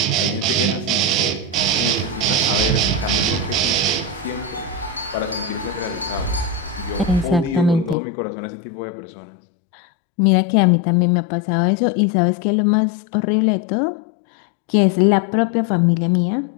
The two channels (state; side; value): drops out; right; at 8.0 s